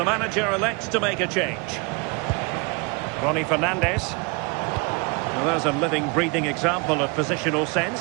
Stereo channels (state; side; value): quieter; left; 30.1 dB